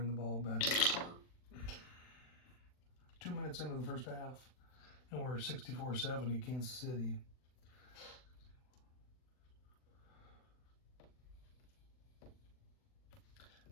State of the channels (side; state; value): right; late; 40 ms